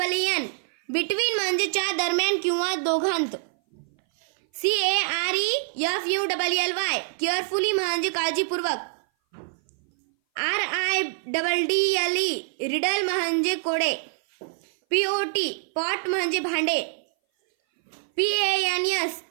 बिटवीन म्हणजे च्या दरम्यान किंवा दोघांत. CAREFULLY केअरफुली म्हणजे काळजीपूर्वक. RIDDLE रिडल म्हणजे कोडे. POT पॉट म्हणजे भांडे. PANS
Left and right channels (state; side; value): silent; left; 58 dB below the other